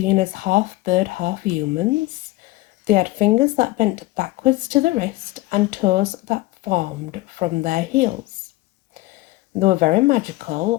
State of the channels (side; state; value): right; quieter; 18.9 dB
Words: as half bird, half humans. They had fingers that bent backwards to the wrist and toes that formed from their heels. They were very